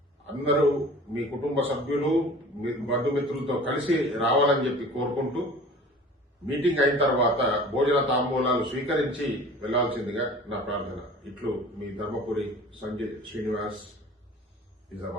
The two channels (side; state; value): both; normal; correlation 0.43